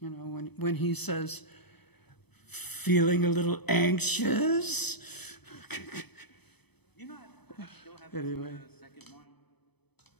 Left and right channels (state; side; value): late; right; 0.98 ms